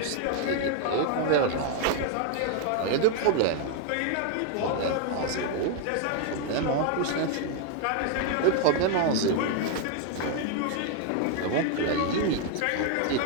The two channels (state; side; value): different; both; correlation 0.00